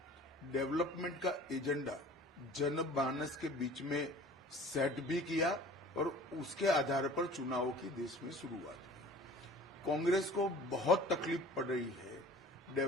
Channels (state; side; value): normal; both; correlation 0.46